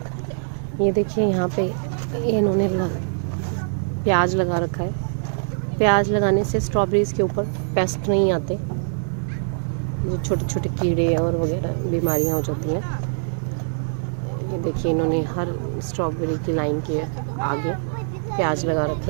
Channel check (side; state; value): left; silent; digital silence